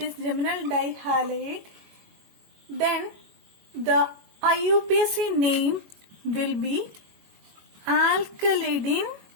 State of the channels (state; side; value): late; left; 21 ms